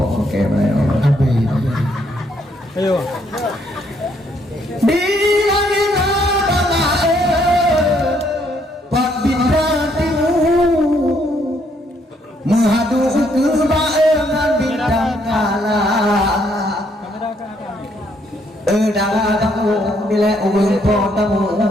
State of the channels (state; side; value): normal; both; correlation 0.71